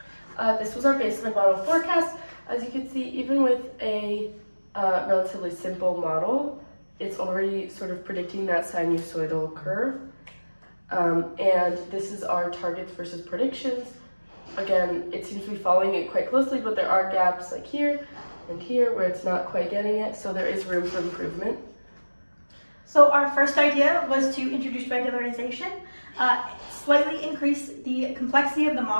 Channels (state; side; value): inverted; both; correlation -1.00